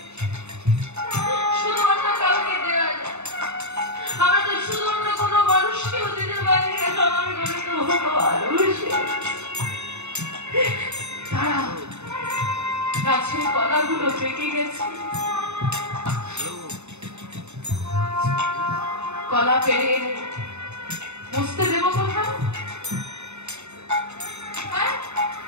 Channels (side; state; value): left; late; 0.82 ms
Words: শুধু অন্য কাউকে দেওয়া যায়? আমরা তো শুধু অন্য কোনো মানুষকেও দিতে পারি না। আমার ঘরে তো ভগবান বসে তারা গাছের কলাগুলো পেকে গেছে, কলা পেরে বুঝতে দেবো কোথাও?